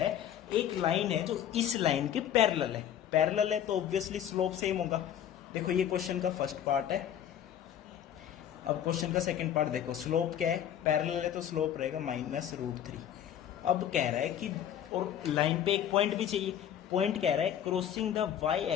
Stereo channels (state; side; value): quieter; right; 10.0 dB